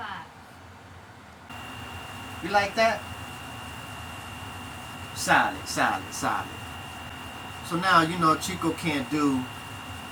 You like that? Solid, solid, solid. So now, you know, Chico can't do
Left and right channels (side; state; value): both; identical; correlation 1.00